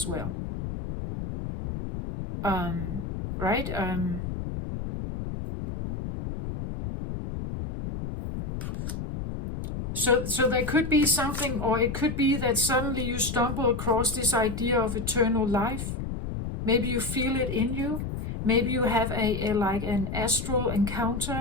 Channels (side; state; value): left; noise; rumble, 5 dB below the sound